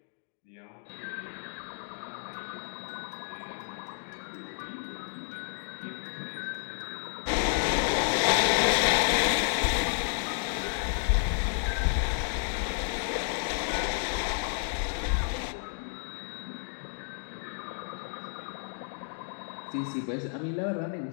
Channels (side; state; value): right; silent; 57 dB below the other